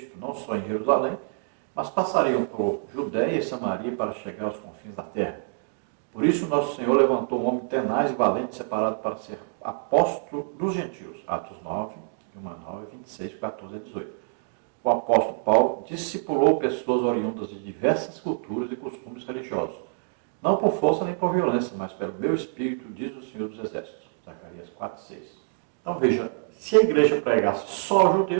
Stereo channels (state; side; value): silent; left; digital silence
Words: não só em Jerusalém, mas passariam por Judéia e Samaria para chegar aos confins da terra. Por isso, nosso Senhor levantou um homem tenaz e valente, separado para ser apóstolo dos gentios. Atos 9, 9, 26, 14 a 18. O apóstolo Paulo discipulou pessoas oriundas de diversas culturas e costumes religiosos, não por força nem por violência, mas pelo meu espírito, diz o Senhor dos Exércitos. Zacarias 4, 6. Então veja, se a igreja pregasse só aos